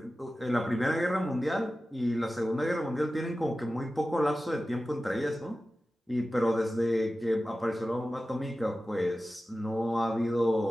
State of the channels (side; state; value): both; normal; correlation 0.95